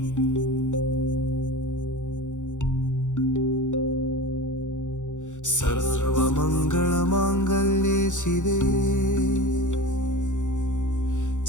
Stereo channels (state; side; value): late; right; 0.85 ms